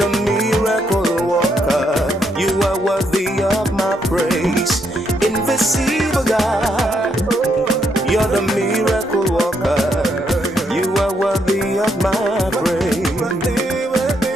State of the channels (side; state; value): both; normal; correlation 0.76